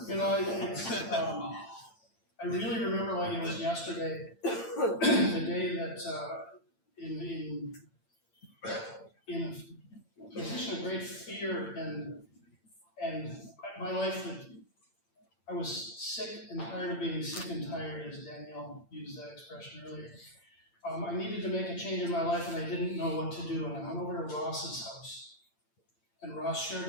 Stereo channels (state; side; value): late; right; 8.8 ms